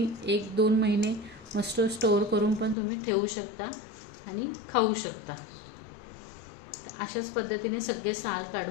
1-2 महिने मस्त स्टोर करून पण तुम्ही ठेवू शकता आणि खाऊ शकता। तर अशाच पद्धतीने सगळे साल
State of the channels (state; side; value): drops out; right; at 2.8 s